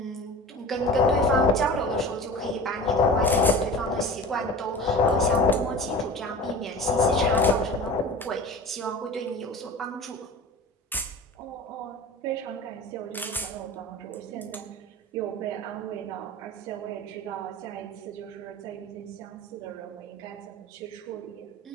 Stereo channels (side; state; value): both; normal; correlation 0.37